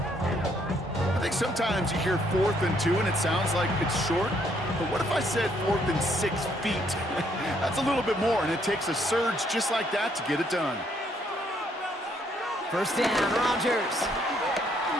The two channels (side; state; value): both; normal; correlation 0.69